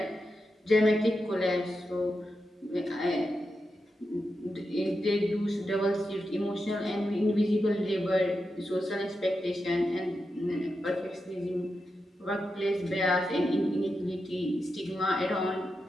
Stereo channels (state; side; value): normal; both; correlation 0.88